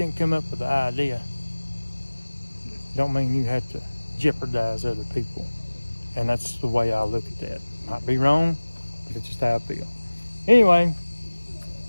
come up with the idea don't mean you have to jeopardize other people. And that's the way I look at that. Might be wrong, but it's just how I feel. Anyway,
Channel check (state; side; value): inverted; both; correlation -1.00